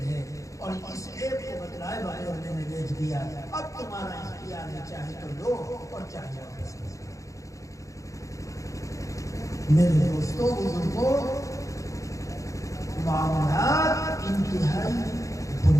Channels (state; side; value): late; right; 0.16 ms